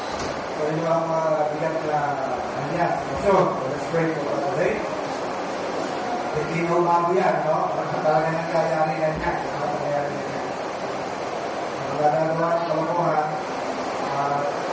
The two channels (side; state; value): both; identical; correlation 1.00